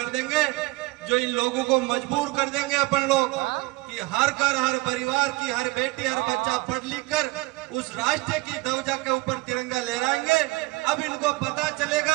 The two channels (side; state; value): left; quieter; 23.1 dB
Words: देंगे, जो इन लोगों को मजबूर कर देंगे अपन लोग कि हर घर, हर परिवार की हर बेटी, हर बच्चा पढ़ लिख कर उस राष्ट्र की ध्वजा के ऊपर तिरंगा लहराएंगे। अब इनको पता